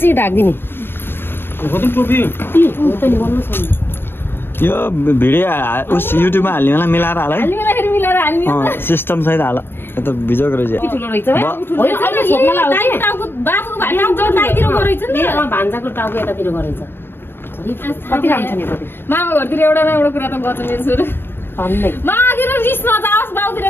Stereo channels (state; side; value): late; right; 0.11 ms